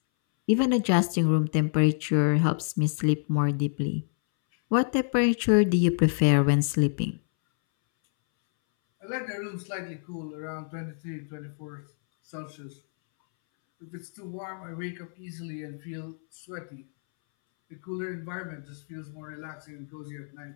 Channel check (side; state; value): right; silent; 60 dB below the other